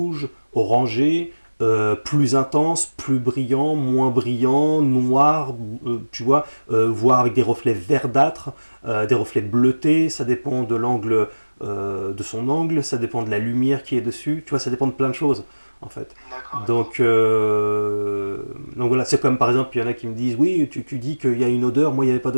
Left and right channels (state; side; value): inverted; both; correlation -1.00